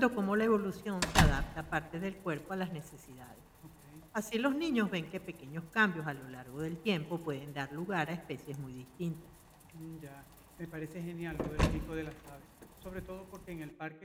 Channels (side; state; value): both; identical; correlation 1.00